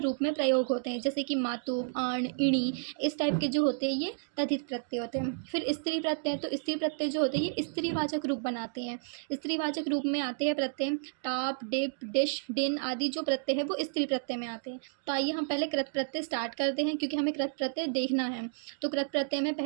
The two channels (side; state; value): left; silent; digital silence